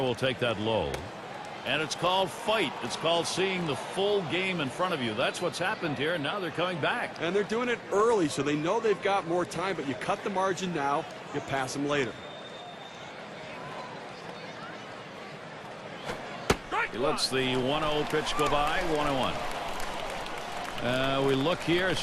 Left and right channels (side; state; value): both; identical; correlation 1.00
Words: will take that low. And it's called fight. It's called seeing the full game in front of you. That's what's happened here, and now they're coming back. And they're doing it early, so they know they've got more time, but you cut the margin now, you pass them later. He lets the 1-0 pitch go by, 1-1. We look here,